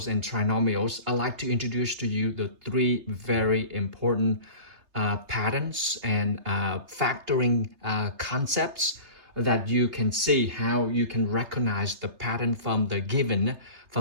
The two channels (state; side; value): late; left; 3.3 ms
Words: and trinomials, I'd like to introduce to you the three very important patterns and factoring concepts that you can see how you can recognize the pattern from the given